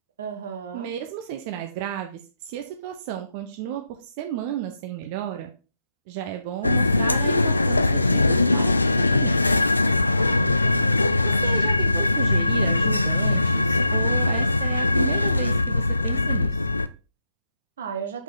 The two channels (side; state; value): both; inverted; correlation -0.87